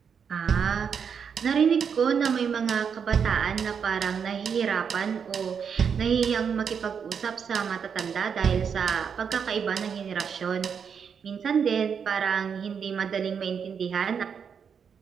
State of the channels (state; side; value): quieter; left; 6.8 dB